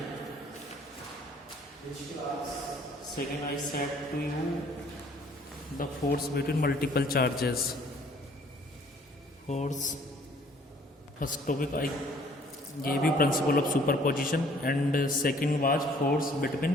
I said to you the force between multiple charges. Force. First topic I gave you principle of superposition, and second was force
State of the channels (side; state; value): both; normal; correlation 0.58